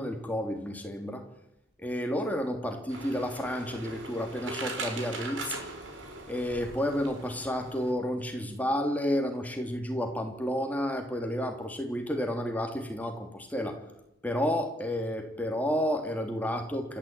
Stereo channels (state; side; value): normal; both; correlation 0.73